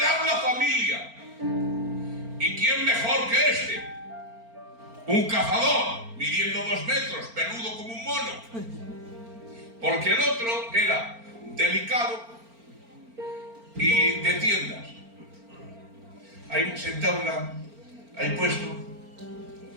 la familia. ¿Y quién mejor que este? un cazador midiendo 2 metros, peludo como un mono, porque el otro era delicado y de tiendas. Ahí sentado, ahí puesto.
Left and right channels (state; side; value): late; left; 4.4 ms